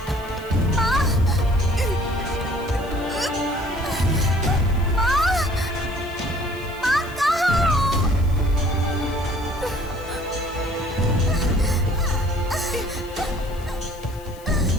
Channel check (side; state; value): left; noise; hiss, 22 dB below the sound